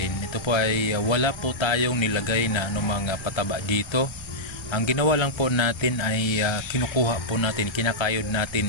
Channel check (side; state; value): right; late; 1.3 ms